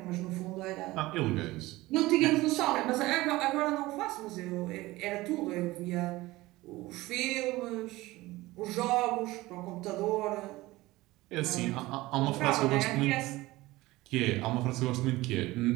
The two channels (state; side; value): quieter; left; 19.1 dB